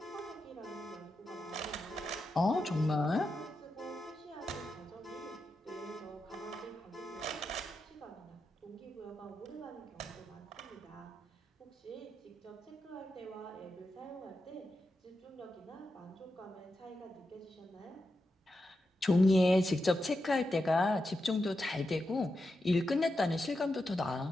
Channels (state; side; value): normal; both; correlation 0.88